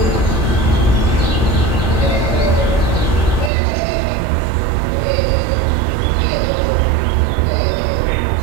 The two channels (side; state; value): left; drops out; at 3.5 s